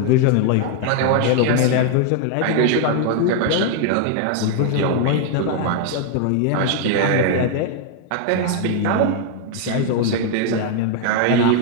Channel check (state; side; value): different; both; correlation 0.00